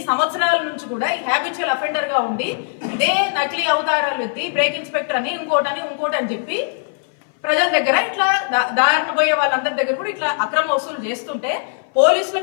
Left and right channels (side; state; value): right; silent; 57 dB below the other